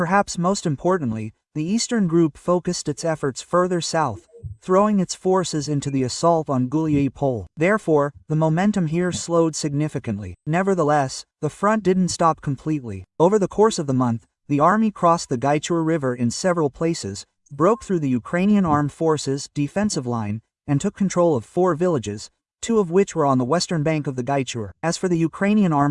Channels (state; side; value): identical; both; correlation 1.00